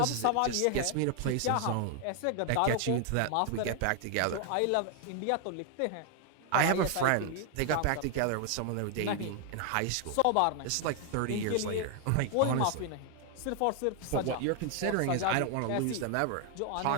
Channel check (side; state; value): both; different; correlation 0.00